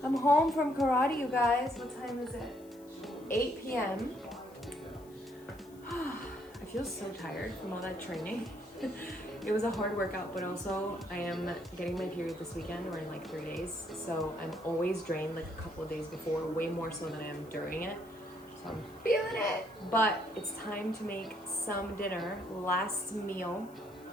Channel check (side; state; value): left; noise; hiss, 26 dB below the sound